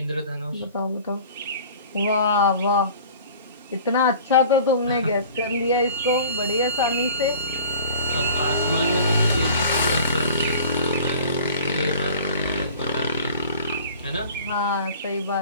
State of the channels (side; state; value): both; inverted; correlation -0.44